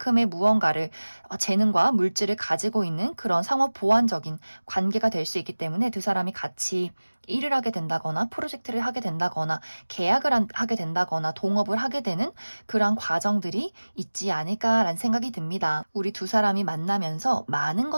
무언가를 재능과 물질을 가지고 있는 그런 상호 보완적인 관계가 될 수 있기 때문에 두 사람이 같이 일을 하게 된다거나 프로젝트를 하게 된다거나 계약을 하게 된다거나 동업을 하게 되는 그런 과정들이 있지 않을까라는 생각이 듭니다. 우리 두 사람이 만나면서 많은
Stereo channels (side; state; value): both; inverted; correlation -1.00